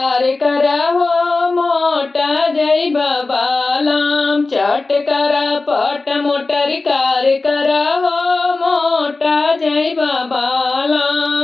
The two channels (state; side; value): quieter; right; 3.5 dB